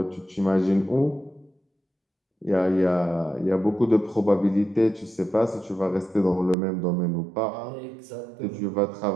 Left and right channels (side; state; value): left; drops out; at 6.6 s